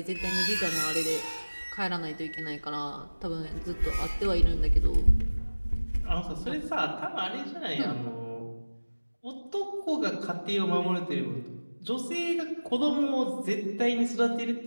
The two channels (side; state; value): both; inverted; correlation -1.00